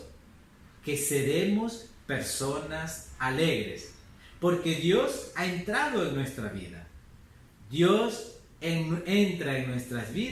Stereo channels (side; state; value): both; identical; correlation 1.00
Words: que seremos personas alegres, porque Dios ha entrado en nuestra vida. Dios entra en nuestras